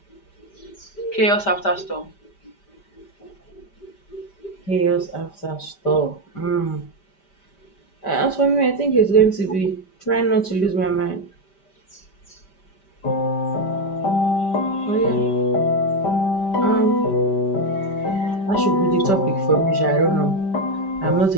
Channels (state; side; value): late; right; 5.1 ms